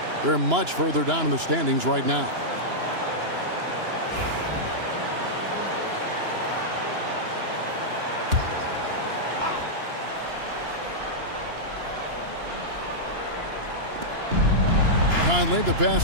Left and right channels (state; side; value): late; left; 2.9 ms